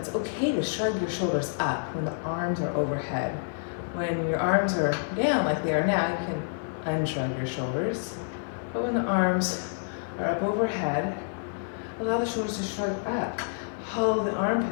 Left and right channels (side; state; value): right; silent; 56 dB below the other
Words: okay to shrug your shoulders up when the arms are overhead. When your arms are down like they are now, you can unshrug your shoulders. But when the arms are up overhead, allow the shoulders to shrug up. Hollow the